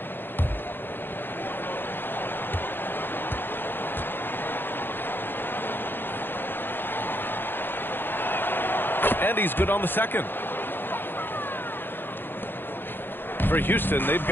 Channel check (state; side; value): late; right; 0.099 ms